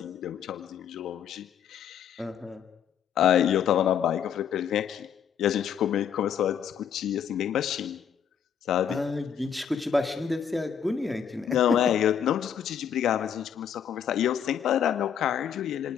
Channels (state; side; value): quieter; right; 8.3 dB